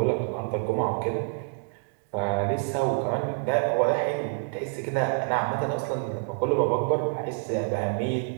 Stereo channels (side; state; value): left; silent; digital silence